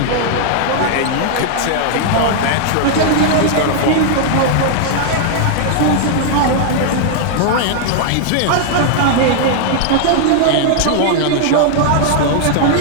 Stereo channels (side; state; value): both; different; correlation -0.01